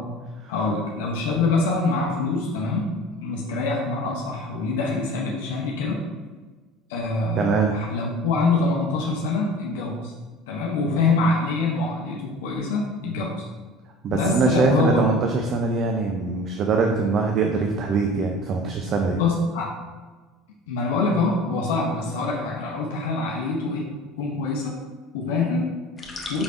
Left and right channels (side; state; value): both; normal; correlation 0.41